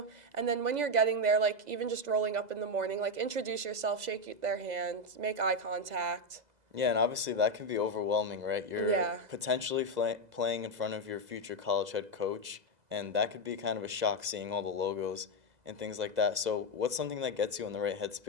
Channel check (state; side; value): late; left; 2.0 ms